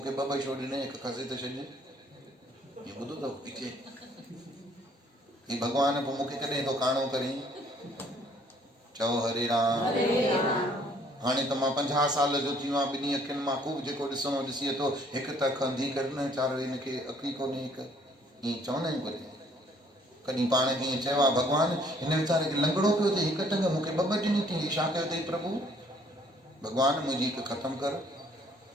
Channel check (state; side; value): normal; both; correlation 0.61